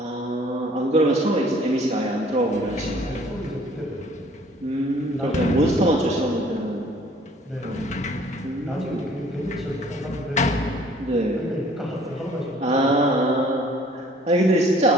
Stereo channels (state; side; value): normal; both; correlation 0.56